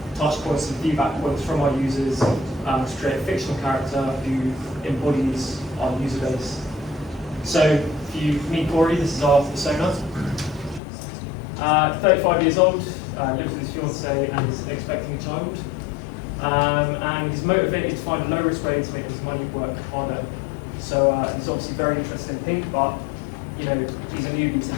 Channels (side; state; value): right; drops out; at 10.8 s